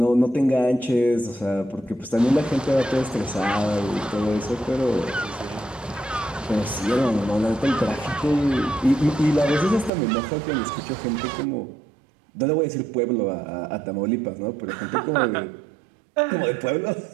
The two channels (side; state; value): left; drops out; at 9.9 s